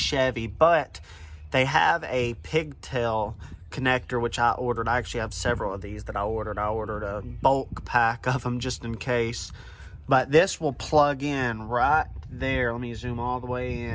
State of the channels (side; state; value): both; identical; correlation 1.00